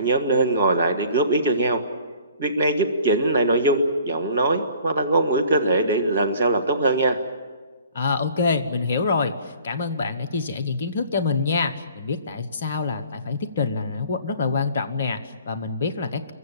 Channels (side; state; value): both; inverted; correlation -0.52